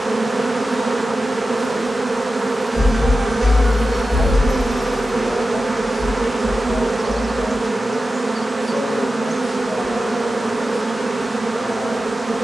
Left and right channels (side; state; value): both; normal; correlation 0.93